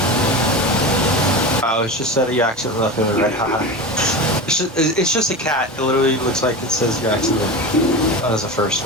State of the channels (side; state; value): both; normal; correlation 0.26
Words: Oh, it's just that you accidentally left him in red. Haha. It's just a cat. It literally looks like it says you accidentally. That was the first